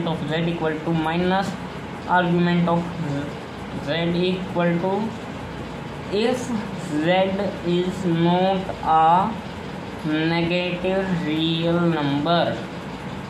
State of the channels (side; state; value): both; identical; correlation 1.00